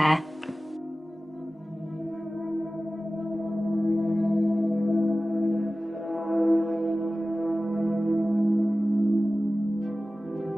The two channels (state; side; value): normal; both; correlation 0.96